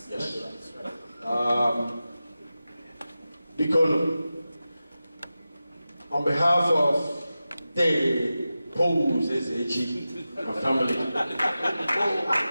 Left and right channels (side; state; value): both; inverted; correlation -0.94